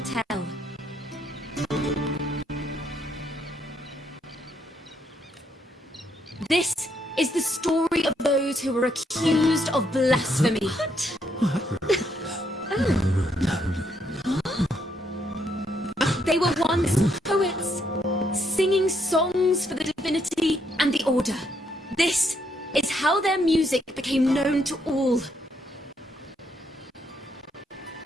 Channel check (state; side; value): normal; both; correlation 0.74